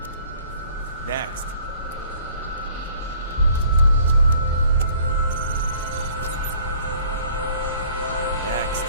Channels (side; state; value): both; inverted; correlation -0.54